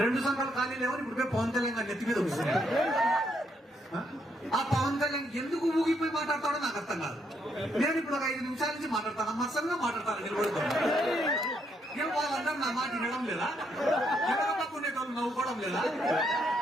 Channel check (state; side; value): normal; both; correlation 0.75